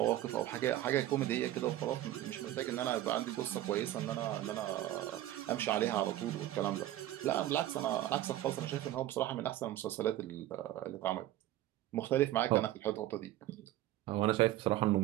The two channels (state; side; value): quieter; left; 14.1 dB